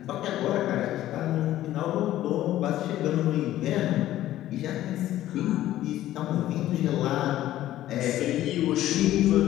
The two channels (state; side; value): quieter; right; 13.9 dB